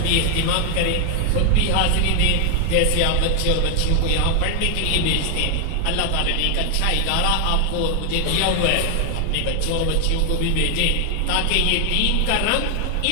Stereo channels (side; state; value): both; different; correlation 0.00